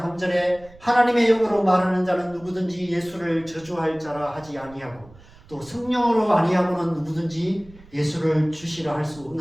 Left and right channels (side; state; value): right; noise; rumble, 23 dB below the sound